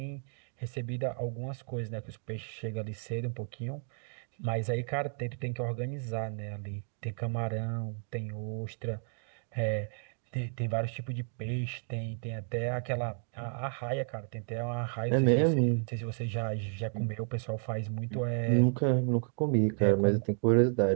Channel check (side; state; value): left; silent; 56 dB below the other